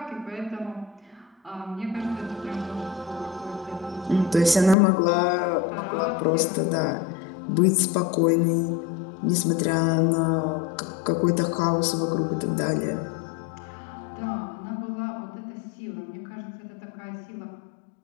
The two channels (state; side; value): drops out; right; at 4.8 s